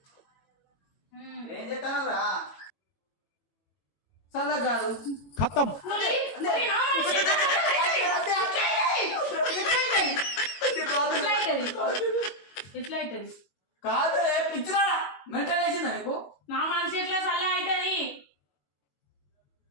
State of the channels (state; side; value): late; right; 21 ms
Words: ఏం చెప్తాను రా చల్లగా కాదు ఖతం. ఎట్లయితది కాదు పిచ్చిరా మెంటల్ వేసిందా నీకు నా మనసు ఎట్లా చల్లగా అవుతుంది